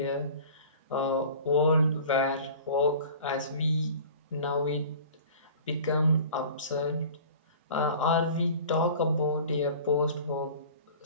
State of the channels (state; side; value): inverted; both; correlation -0.43